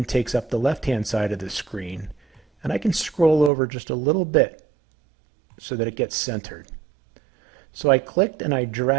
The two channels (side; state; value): left; drops out; at 3.5 s